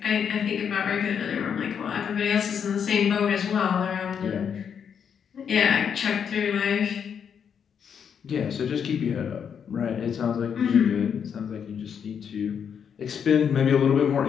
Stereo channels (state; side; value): quieter; right; 7.5 dB